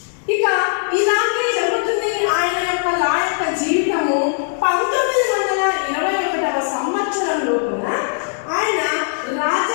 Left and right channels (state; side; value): silent; right; digital silence